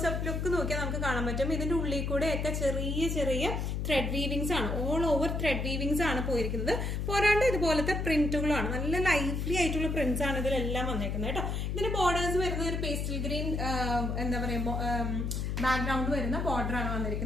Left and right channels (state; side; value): noise; left; hum, 1 dB below the sound